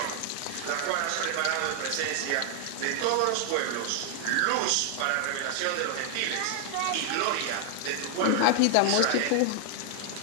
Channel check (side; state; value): both; different; correlation 0.00